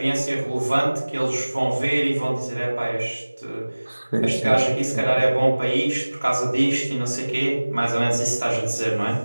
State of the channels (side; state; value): both; inverted; correlation -1.00